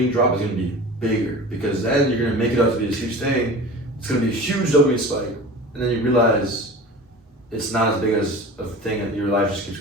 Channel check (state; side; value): normal; both; correlation 0.37